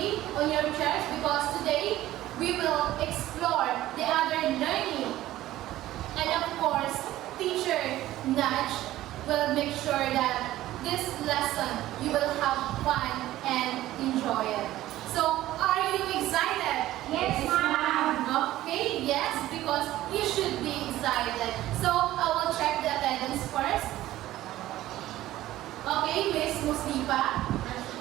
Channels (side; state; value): left; quieter; 15.0 dB